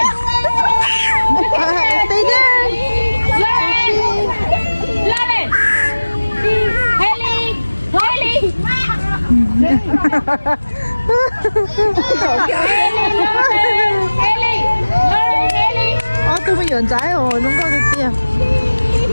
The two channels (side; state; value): both; inverted; correlation -1.00